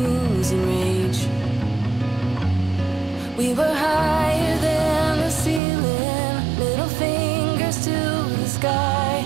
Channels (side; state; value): left; drops out; at 5.6 s